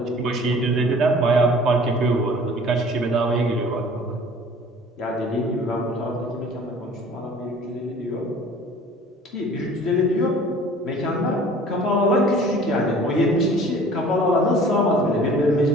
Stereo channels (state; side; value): normal; both; correlation 0.48